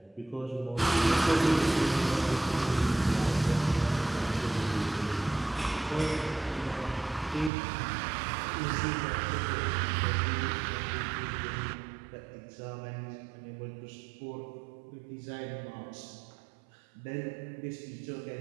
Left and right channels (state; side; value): drops out; left; at 7.5 s